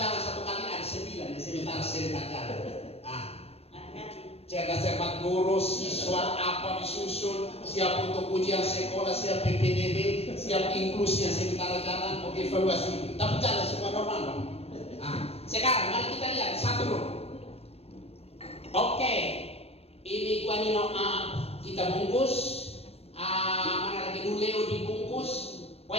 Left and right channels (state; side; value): late; right; 0.29 ms